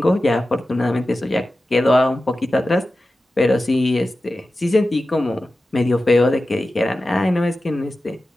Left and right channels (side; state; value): both; normal; correlation 0.94